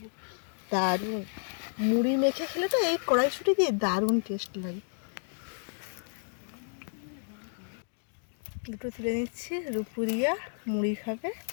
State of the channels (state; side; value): silent; right; digital silence